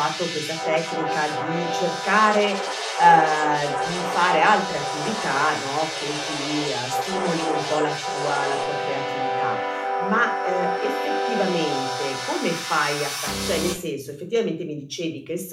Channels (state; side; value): identical; both; correlation 1.00